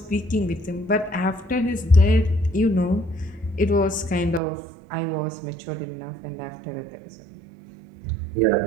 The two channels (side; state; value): left; drops out; at 4.4 s